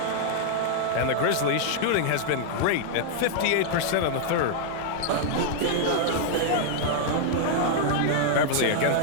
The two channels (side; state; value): both; different; correlation -0.01